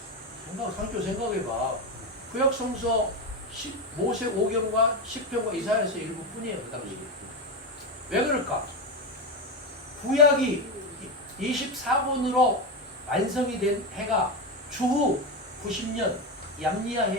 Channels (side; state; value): both; normal; correlation 0.14